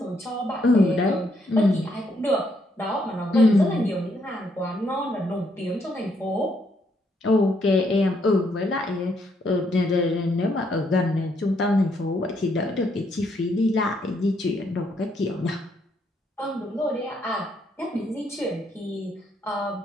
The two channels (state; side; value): normal; both; correlation 0.73